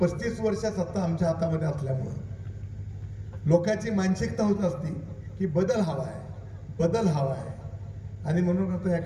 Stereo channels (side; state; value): both; identical; correlation 1.00